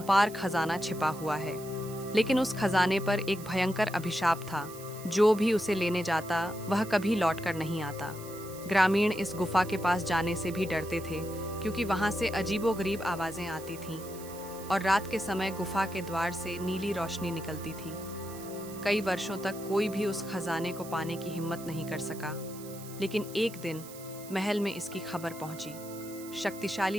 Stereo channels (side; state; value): right; noise; hiss, 16 dB below the sound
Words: खजाना छिपा हुआ है। लेकिन उस खजाने पर एक भयंकर अभिशाप था। जो भी उसे लेने जाता वह कभी लौटकर नहीं आता। ग्रामीण इस गुफा के पास जाने से भी डरते थे, क्योंकि वहां से अजीबोगरीब आवाजें आती थीं और रात के समय गुफा के द्वार से नीली रोशनी निकलती थी। कई वर्षों तक कोई भी उस खजाने को पाने की हिम्मत नहीं कर सका। लेकिन एक दिन महल में इसकी खबर पहुंची।